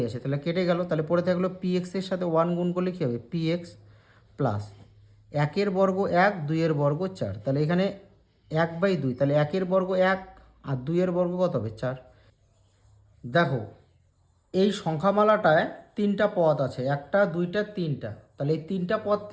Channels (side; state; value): both; identical; correlation 1.00